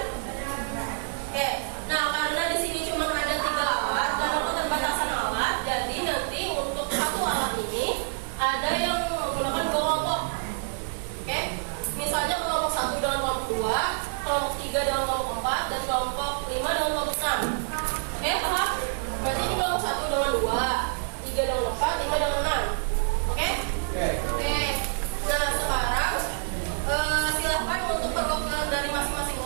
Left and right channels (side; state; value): left; silent; 60 dB below the other